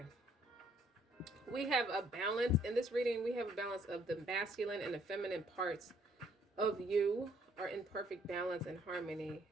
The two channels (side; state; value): both; normal; correlation 0.65